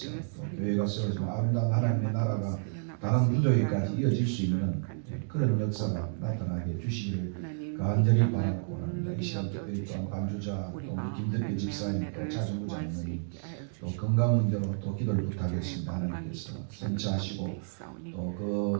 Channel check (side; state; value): left; silent; digital silence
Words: 또 교회가 세워지고 아름다운 하나님의 나라가 다른 부족에까지 이어질 수 있는 그런 역사가 나타나게 해주시기를 간절히 바라고 합니다. 이 시간 특별히 또한 반주자 또 우리 김덕배 집사님 또 차중구 장로님 또 건강 문제로 또 기도를 부탁했습니다. 하나님께서 선처하시고 또